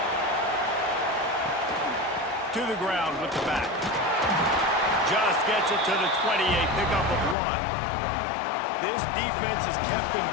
To the ground with the back. Just gets it to the 28, pickup of 1. This defense has kept them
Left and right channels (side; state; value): right; drops out; at 7.4 s